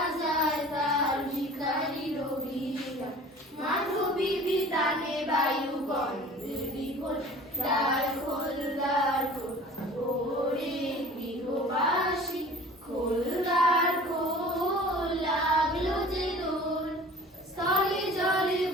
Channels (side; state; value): both; normal; correlation 0.44